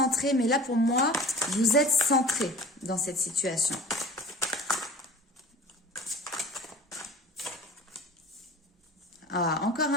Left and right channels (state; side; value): normal; both; correlation 0.41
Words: mais là pour moi, vous êtes centré dans cette situation. Ah, encore